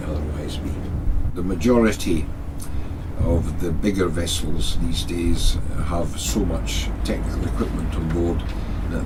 otherwise be. The majority of the bigger vessels these days have so much technical equipment on board that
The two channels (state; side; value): identical; both; correlation 1.00